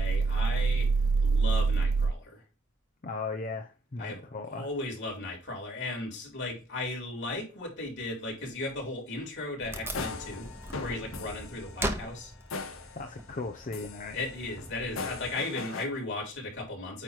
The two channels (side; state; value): both; normal; correlation 0.59